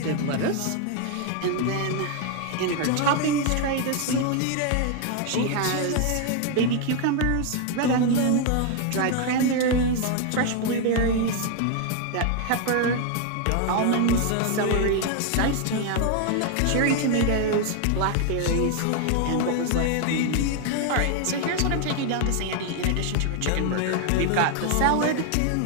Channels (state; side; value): different; both; correlation 0.01